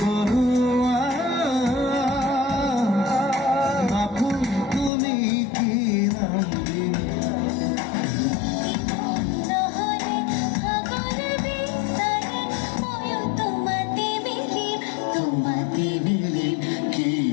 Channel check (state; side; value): drops out; right; at 4.9 s